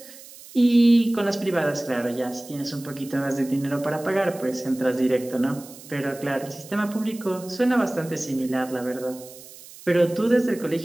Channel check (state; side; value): noise; right; hiss, 18 dB below the sound